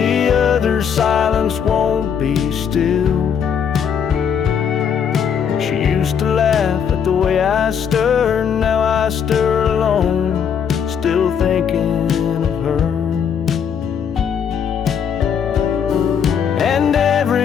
other silence won't be still. She used to laugh at the way I stir, now I stir alone, still thinking of her. And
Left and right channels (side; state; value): right; quieter; 7.5 dB